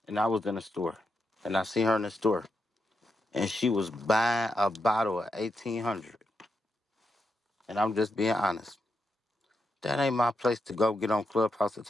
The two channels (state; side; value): normal; both; correlation 0.84